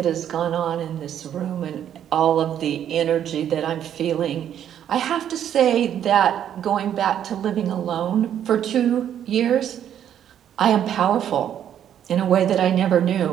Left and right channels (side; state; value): left; quieter; 9.9 dB